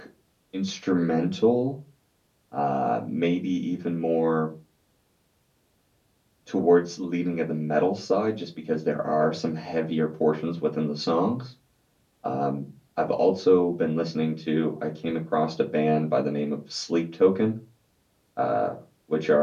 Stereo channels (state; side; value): identical; both; correlation 1.00